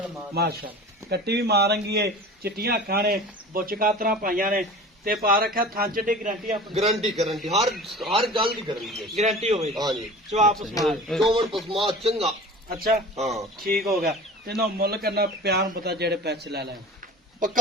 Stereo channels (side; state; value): both; normal; correlation 0.39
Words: कट्टी भी मारंगी है। चिट्टियां अखां ने, बुच कातरा पाइयां ने ते पा रखा थान च गारंटी अपनी गारंटी गारंटी हर गल दी गारंटी है। गारंटी होवे हां जी जवाब सुना। चोवन पसमा चंगा। अच्छा हां ठीक हो गया। ते ना मुੱਲ करना प्यार पता जेड़े पैसे ले ले